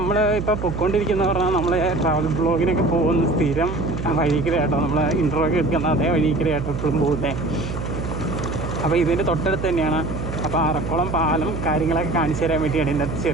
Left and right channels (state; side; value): noise; right; hum, 6 dB below the sound